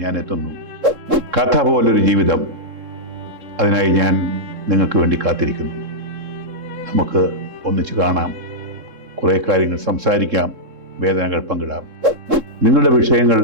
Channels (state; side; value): late; left; 3.7 ms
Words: ഞാൻ എത്തുന്നു. കഥ പോലൊരു ജീവിതം, അതിനായി ഞാൻ നിങ്ങൾക്ക് വേണ്ടി കാത്തിരിക്കുന്നു. നമുക്ക് ഒന്നിച്ച് കാണാം, കുറേ കാര്യങ്ങൾ സംസാരിക്കാം, വേദനകൾ പങ്കിടാം. നിങ്ങളുടെ വിഷയങ്ങൾ,